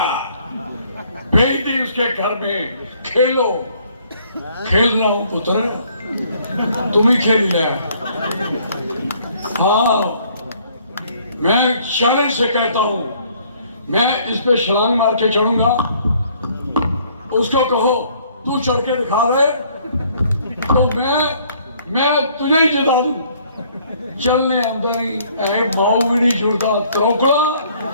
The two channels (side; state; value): both; inverted; correlation -0.62